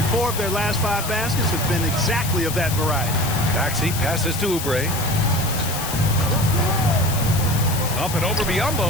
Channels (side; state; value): left; noise; hiss, 7 dB below the sound